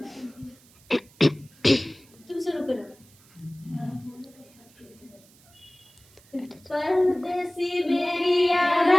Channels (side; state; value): right; noise; hiss, 28 dB below the sound